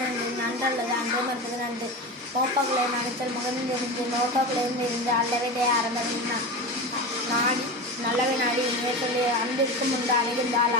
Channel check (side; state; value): both; normal; correlation 0.25